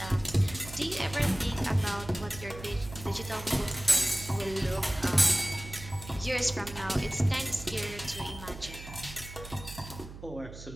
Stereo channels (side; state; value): right; noise; hum, 14 dB below the sound